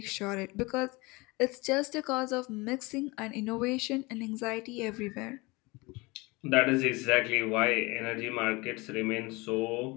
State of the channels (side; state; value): right; quieter; 24.5 dB